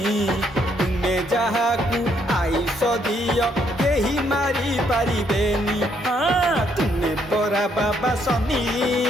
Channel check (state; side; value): normal; both; correlation 0.71